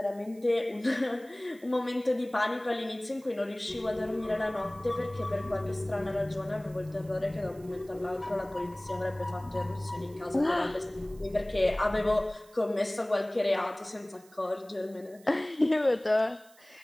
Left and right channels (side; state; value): right; noise; hiss, 26 dB below the sound